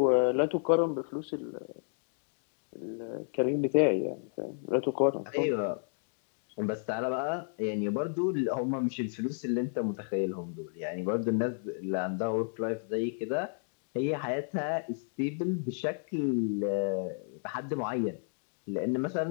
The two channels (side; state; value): right; silent; 56 dB below the other